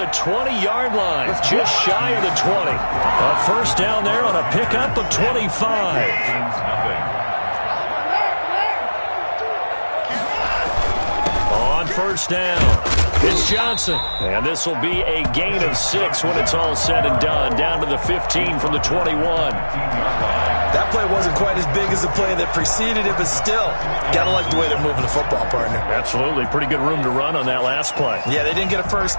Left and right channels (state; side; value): inverted; both; correlation -1.00